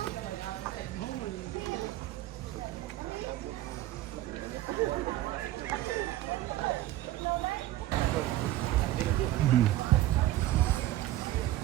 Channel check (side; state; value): left; quieter; 14.7 dB